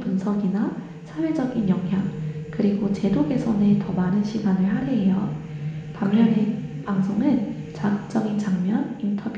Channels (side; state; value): both; identical; correlation 1.00